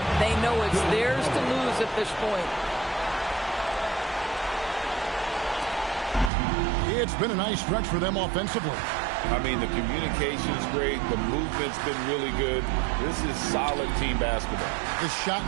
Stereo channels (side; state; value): left; drops out; at 6.3 s